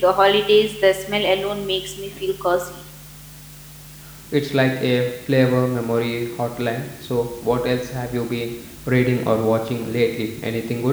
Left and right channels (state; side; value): identical; both; correlation 1.00